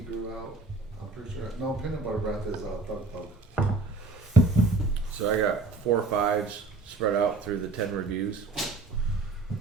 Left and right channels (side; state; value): left; quieter; 3.8 dB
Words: grew out. I'm pretty sure. No, peanut butter breath is Thug Thug. So I got 4 or 5s spread out through the 10 reviews.